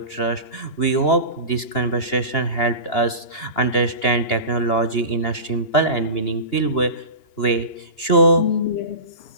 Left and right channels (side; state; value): right; late; 2.9 ms